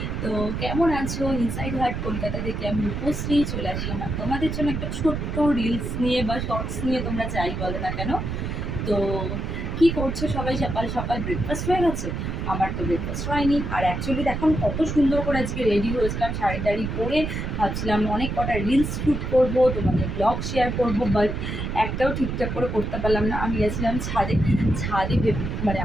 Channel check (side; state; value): right; noise; rumble, 3 dB below the sound